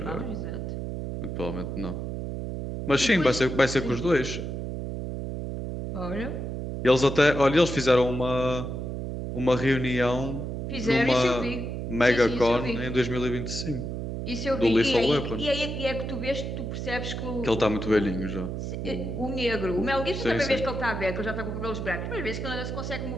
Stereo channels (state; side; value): noise; right; hum, 5 dB below the sound